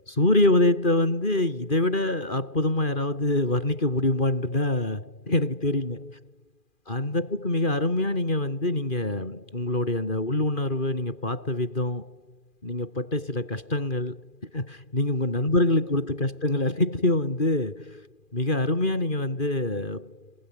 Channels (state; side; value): late; right; 2.4 ms